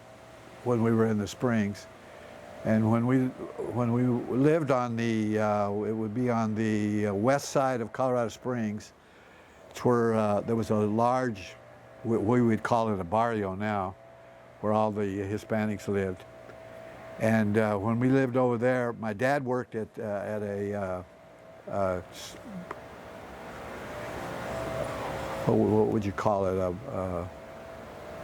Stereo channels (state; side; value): identical; both; correlation 1.00